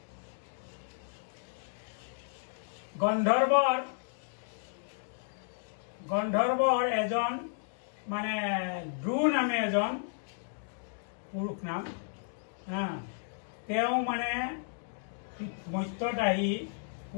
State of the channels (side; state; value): right; silent; digital silence